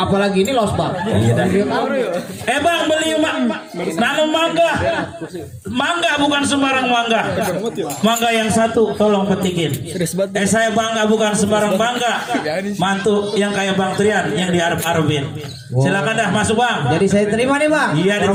ini losbak. Iya dah. Bang, beli nanam mangga. Mangga bukan sembarang mangga. Mangga yang satu tolong petikin. Saya bangga bukan sembarang bangga. Mantu yang kayak Bang Trian yang diarep-arepin. Silakan dah masuk bang. Jadi saya terima nih bang. Iya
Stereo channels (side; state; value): both; identical; correlation 1.00